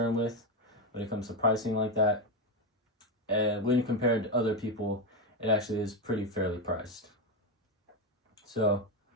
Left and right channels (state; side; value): normal; both; correlation 0.10